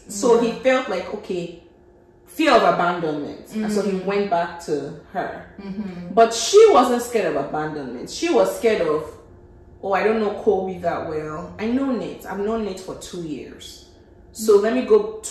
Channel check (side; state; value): both; identical; correlation 1.00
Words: he felt like, okay, fear of abandonment, and so he went back to her. But she wasn't scared of abandonment. She was scared of, oh, I don't know Kobe that well. I know Nate. I've known Nate for 2 years. So let me go